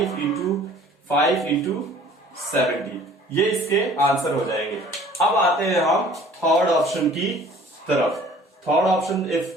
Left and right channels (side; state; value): both; normal; correlation 0.51